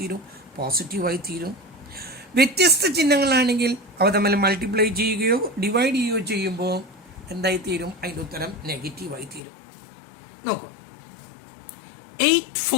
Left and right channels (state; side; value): drops out; right; at 9.4 s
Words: പോസിറ്റീവായി തീരും. വ്യത്യസ്ത ചിഹ്നങ്ങളാണെങ്കിൽ അവ തമ്മിൽ മൾട്ടിപ്ലൈ ചെയ്യുകയോ ഡിവൈഡ് ചെയ്യുകയോ ചെയ്യുമ്പോൾ എന്തായി തീരും? അതിൻ്റെ ഉത്തരം നെഗറ്റീവായി തീരും. നോക്കൂ, 8